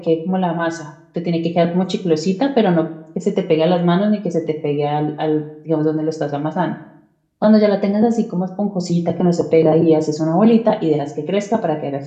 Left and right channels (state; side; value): identical; both; correlation 1.00